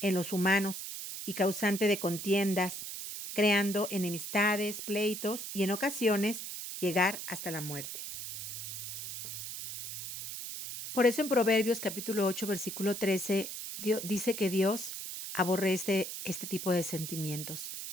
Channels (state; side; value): noise; right; hiss, 7 dB below the sound